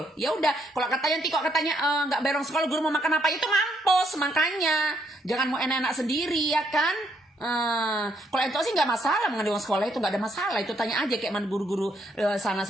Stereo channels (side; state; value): both; normal; correlation 0.73